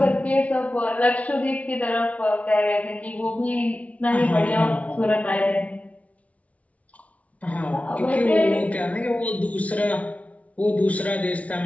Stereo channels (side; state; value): right; late; 0.066 ms